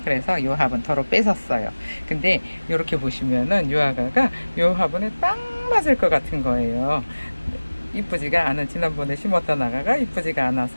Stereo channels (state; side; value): inverted; both; correlation -1.00